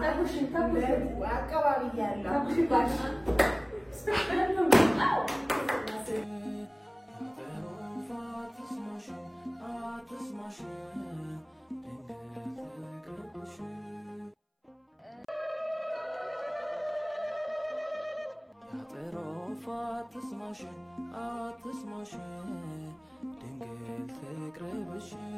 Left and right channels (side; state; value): both; identical; correlation 1.00